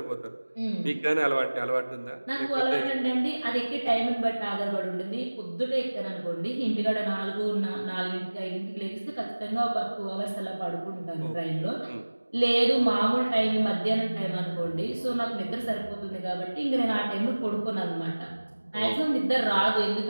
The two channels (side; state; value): both; inverted; correlation -1.00